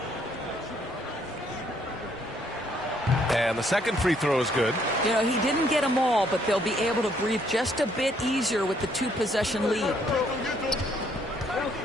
And the second free throw is good. You know, he didn't get them all, but they'll be able to breathe just a bit easier with the 2-possession lead.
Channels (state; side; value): normal; both; correlation 0.68